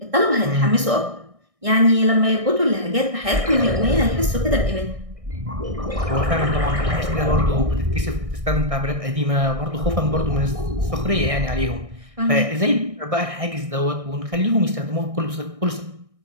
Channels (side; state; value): left; late; 1.6 ms